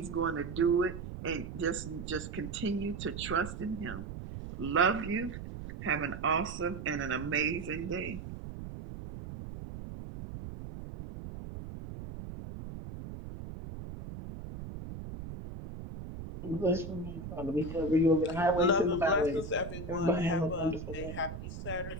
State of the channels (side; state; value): right; noise; rumble, 9 dB below the sound